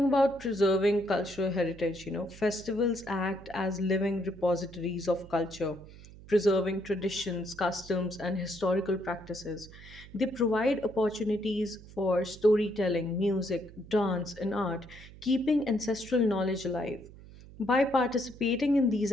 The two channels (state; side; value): noise; right; hum, 19 dB below the sound